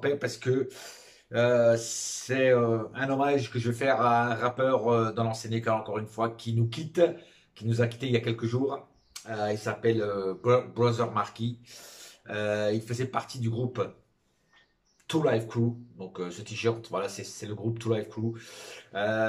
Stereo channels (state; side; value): identical; both; correlation 1.00